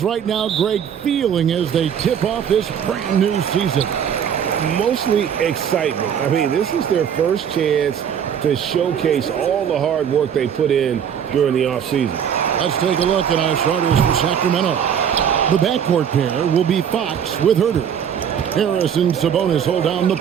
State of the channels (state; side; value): quieter; left; 8.4 dB